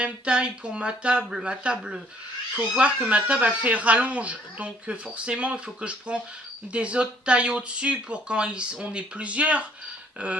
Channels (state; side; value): normal; both; correlation 0.61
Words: taille pour ma table, faut voir que ma table elle fait rallonge, donc forcément il faut que je prends des autres tailles au-dessus pour quand on est plusieurs,